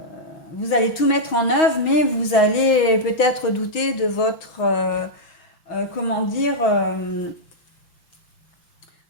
vous allez tout mettre en œuvre, mais vous allez peut-être douter de votre, comment dire,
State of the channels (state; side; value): late; right; 5.8 ms